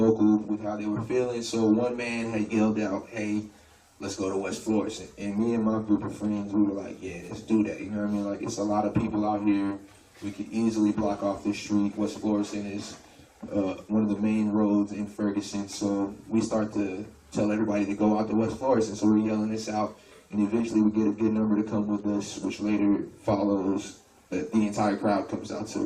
with how they were feeling. So one man had yelled out, "Hey, let's go to West Florissant." And me and my group of friends, we were like, "Yeah, let's do that." You know what I mean? Like, it's a lot of people out here. We could easily block off this street. West Florissant is one of the main roads in Ferguson. So we start to tell everybody to go out to West Florissant. So we're yelling this out, and eventually we get a good number to come with us, which later follows. The entire crowd comes out to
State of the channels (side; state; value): both; identical; correlation 1.00